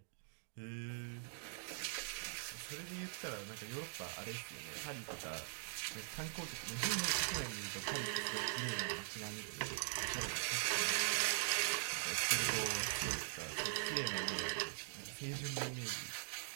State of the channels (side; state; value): left; silent; digital silence